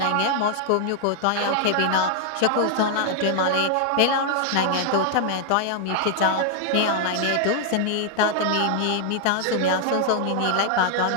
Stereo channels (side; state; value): both; different; correlation 0.00